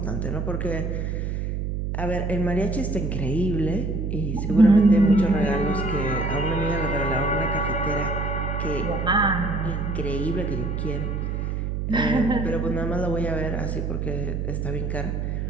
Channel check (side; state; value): right; noise; hum, 2 dB below the sound